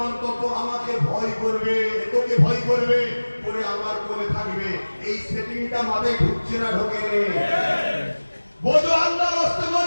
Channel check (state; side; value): inverted; both; correlation -1.00